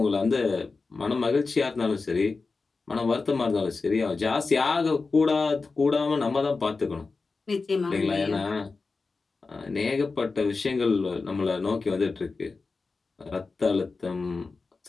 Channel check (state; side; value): quieter; right; 4.1 dB